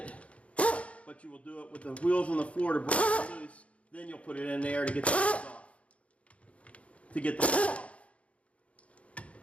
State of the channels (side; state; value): right; late; 0.063 ms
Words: But you will do it with the wheels on the floor to break it loose. Then you'll put it in there to get the wheels off. To get the wheels off.